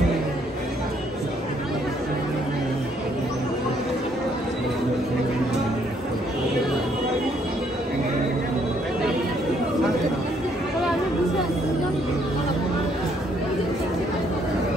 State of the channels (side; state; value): both; normal; correlation 0.68